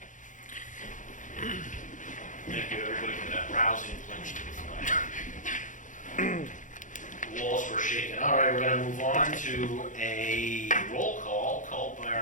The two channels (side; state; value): right; late; 0.37 ms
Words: Thank you, everybody, for that rousing pledge to the flag. The walls were shaken. All right, we're going to move on to a roll call called by